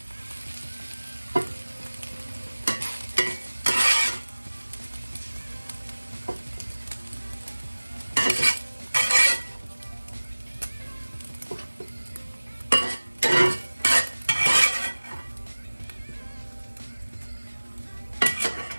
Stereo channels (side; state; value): both; inverted; correlation -1.00